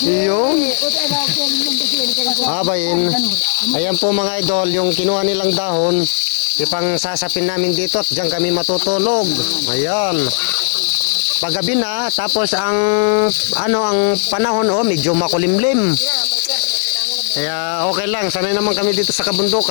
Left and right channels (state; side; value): silent; right; digital silence